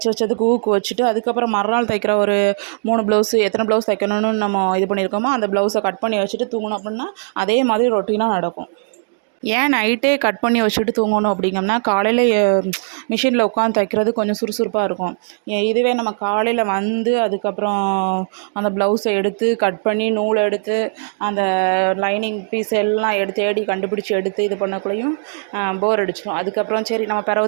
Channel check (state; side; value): silent; left; digital silence